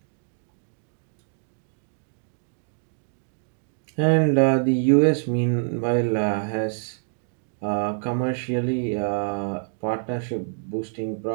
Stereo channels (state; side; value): silent; left; digital silence